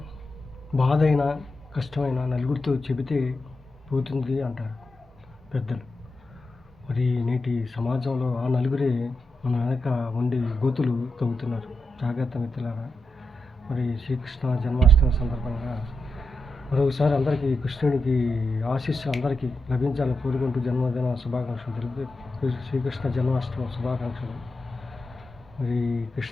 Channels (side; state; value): both; normal; correlation 0.87